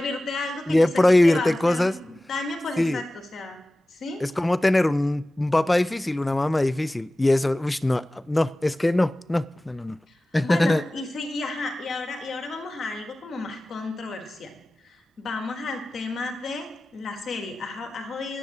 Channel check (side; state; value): both; normal; correlation 0.97